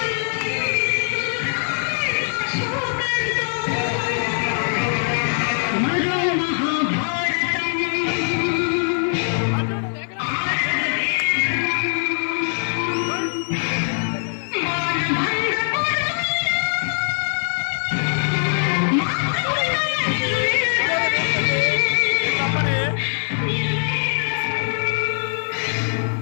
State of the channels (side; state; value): right; silent; digital silence